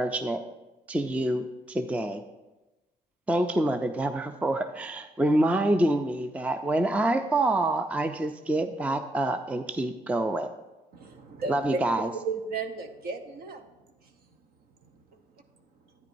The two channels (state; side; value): normal; both; correlation 0.80